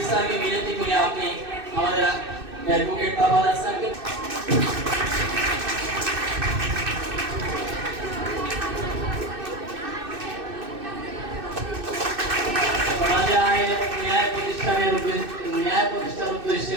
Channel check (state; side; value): late; left; 2.6 ms